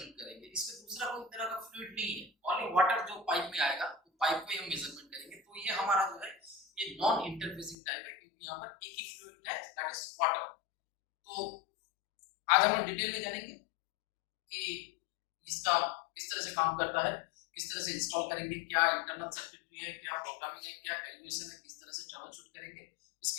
करेंगे। इसमें दूसरा कोई तरह का फ्लूइड नहीं है, ओनली वाटर जो पाइप में आएगा तो पाइप को ही हम मेजरमेंट करेंगे। तो ये हमारा जो है ये नॉन इंटरफेसिंग टाइप है, क्योंकि यहाँ पर एक ही फ्लूइड है, दैट इज वाटर। तो आज हम लोग डिटेल में जानेंगे कि इसका किस तरह से काम करता है, किस तरह से इंस्टॉल करेंगे, क्या इंटरनल सर्किटरी है, क्या प्रोग्रामिंग है, क्या कैलकुलेशन है, किस तरह से ट्रबल शूट करेंगे,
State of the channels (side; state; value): right; drops out; at 7.8 s